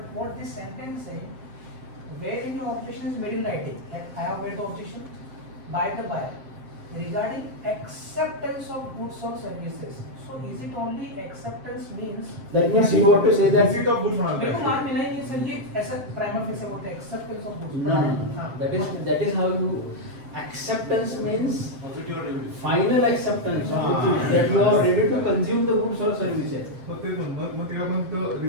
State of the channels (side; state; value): left; late; 7.6 ms